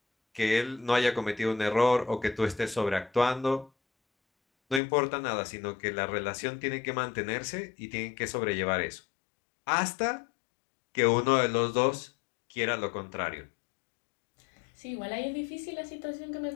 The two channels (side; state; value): right; drops out; at 4.8 s